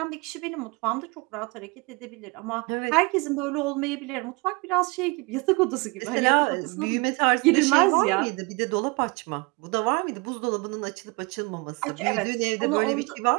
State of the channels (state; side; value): quieter; left; 27.8 dB